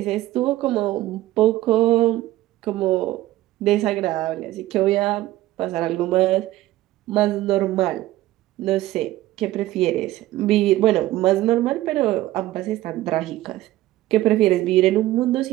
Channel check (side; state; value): left; quieter; 15.8 dB